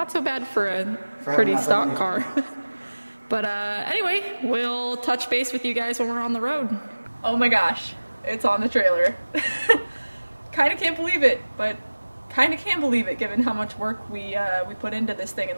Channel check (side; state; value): both; inverted; correlation -1.00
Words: so bad for a pretty stock car. But anyway, we'll touch base with you guys when we're on the road. Oh my gosh, it's on the trailer. Kind of can't believe it, but kind of can believe it given how much work we put into this thing in